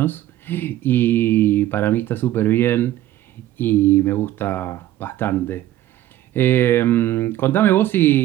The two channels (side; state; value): left; quieter; 13.7 dB